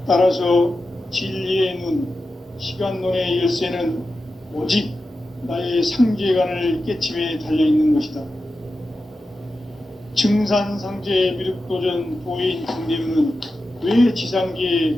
따라서 진리의 눈, 시간론의 열쇠는 오직 나의 상제관을 깨침에 달려있는 것이다. 증산상제 미륵도전 도인 강대문은 왜 지상계에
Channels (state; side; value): normal; both; correlation 0.92